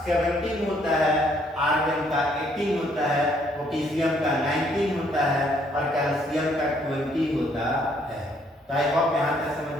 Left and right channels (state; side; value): normal; both; correlation 0.67